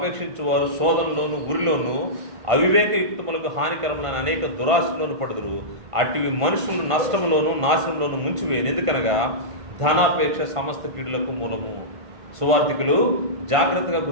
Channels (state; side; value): late; left; 1.5 ms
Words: వారు శోధనలోను ఉరిలోను అవివేకయుక్తములకు హానికరములైన అనేక దురాశలోను పడుదురు. అటువి మనుషులను నష్టంలోను నాశనంలోను ముంచివేయను. ఎందుకనగా ధనాపేక్ష సమస్త కీడులకు మూలము. సువార్థికులు జాగ్రత్తగా